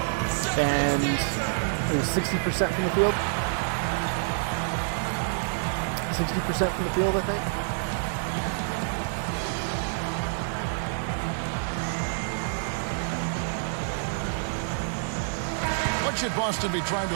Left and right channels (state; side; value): silent; left; 60 dB below the other